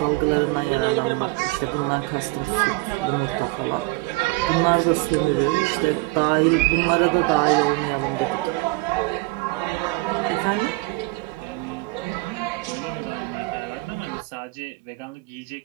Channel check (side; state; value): left; quieter; 23.5 dB